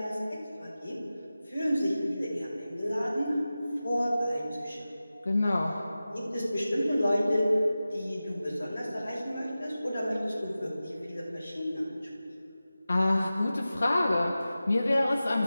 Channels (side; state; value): both; inverted; correlation -0.95